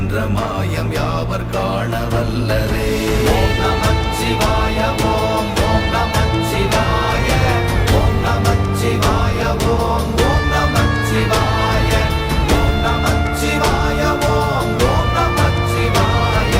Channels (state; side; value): identical; both; correlation 1.00